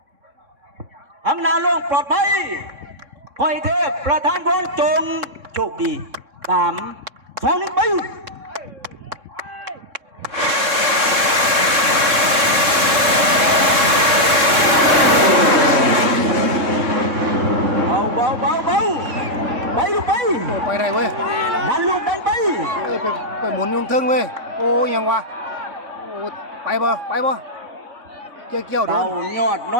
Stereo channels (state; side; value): late; left; 3.6 ms